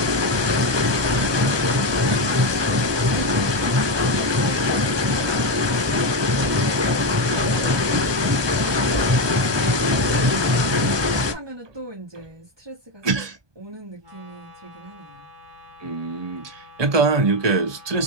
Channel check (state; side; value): late; left; 1.2 ms